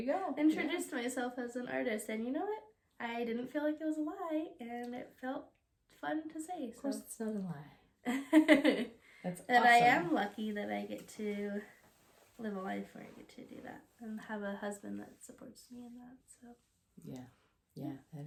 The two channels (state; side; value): identical; both; correlation 1.00